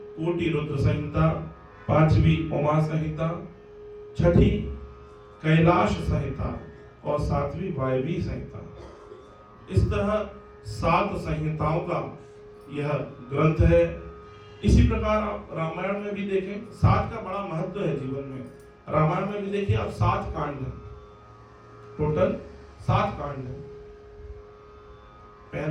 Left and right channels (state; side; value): identical; both; correlation 1.00